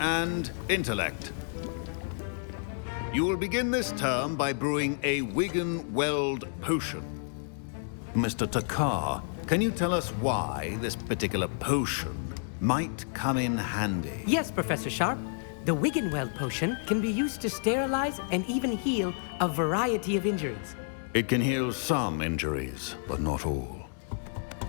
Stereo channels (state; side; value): silent; right; digital silence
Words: intellect. You will begin this term by brewing a Wigan-Weld potion. Mr. Takar, can you tell us why this particular potion might come in handy? Yes, Professor Sharp. The Wiggenweld potion can be used to sterilize and even heal a variety of injuries. It can heal some injuries, but not all.